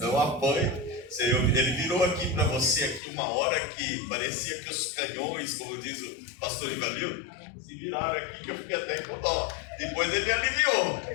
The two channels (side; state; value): right; drops out; at 3.0 s